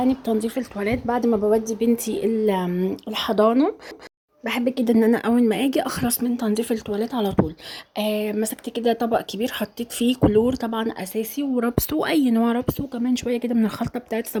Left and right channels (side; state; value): both; identical; correlation 1.00